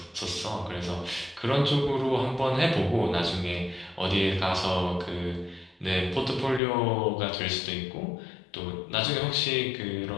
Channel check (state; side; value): drops out; right; at 6.6 s